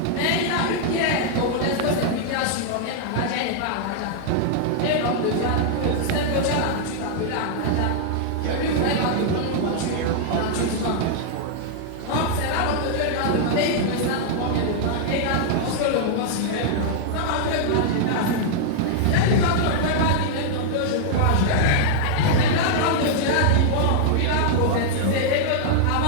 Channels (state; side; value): different; both; correlation -0.01